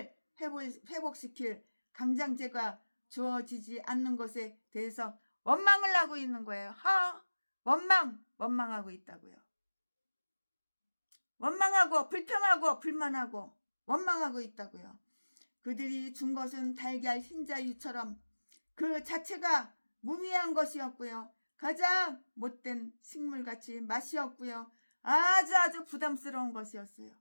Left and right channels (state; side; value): inverted; both; correlation -1.00